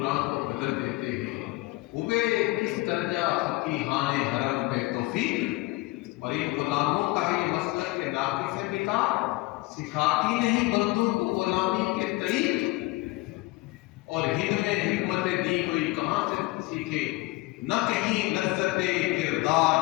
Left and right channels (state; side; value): quieter; right; 21.6 dB